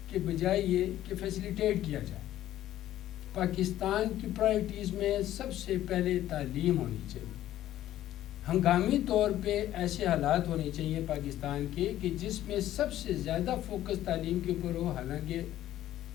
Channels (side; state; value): right; quieter; 13.2 dB